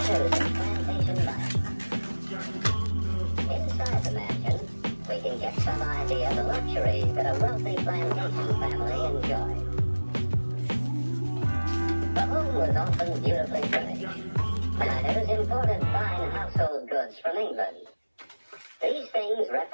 of plantation life. Inside the mansion, we can get some idea of the luxuries that a wealthy plantation family enjoyed. The home was often beautifully furnished. Planters imported fine household goods from England. These things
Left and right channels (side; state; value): both; inverted; correlation -1.00